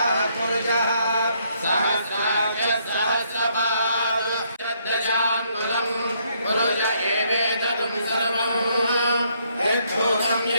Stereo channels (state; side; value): inverted; both; correlation -0.71